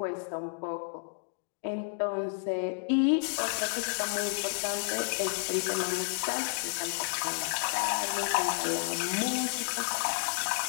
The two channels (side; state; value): right; silent; digital silence